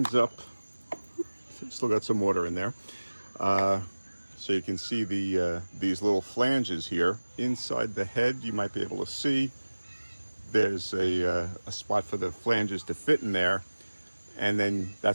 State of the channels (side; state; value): both; inverted; correlation -1.00